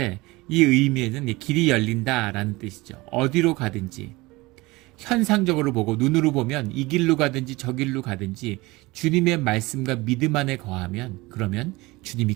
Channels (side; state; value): left; quieter; 21.8 dB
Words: 이 의미에는 길이 열린다라는 뜻이죠. 어디로 가든지 현상적으로 보고 눈으로 보면 이 길로 가든지 저 길로 가든지 주님의 말씀과 믿음 안에 거하면 그러면 주님이